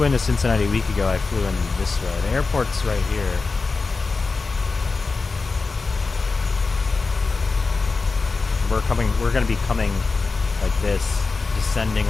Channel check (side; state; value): right; quieter; 4.1 dB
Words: into Cincinnati a week ago, I flew in this way. The airport's right here. We're gonna be coming like this, descending